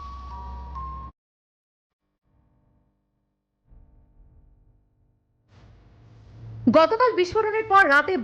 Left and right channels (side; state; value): both; identical; correlation 1.00